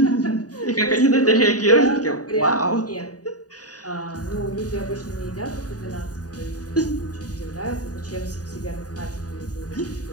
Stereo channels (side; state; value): right; late; 0.68 ms